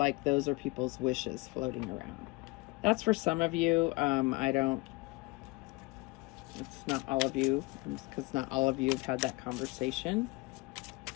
those are people's wishes floating around. That's for some of you. It's not all of you, because not all of you have had that conversation.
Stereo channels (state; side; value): quieter; right; 24.4 dB